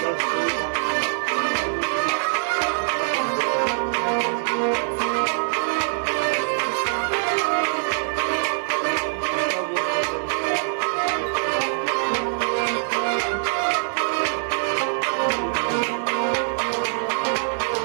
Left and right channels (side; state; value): left; silent; digital silence